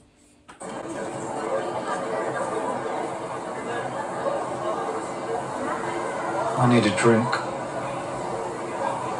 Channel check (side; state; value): both; identical; correlation 1.00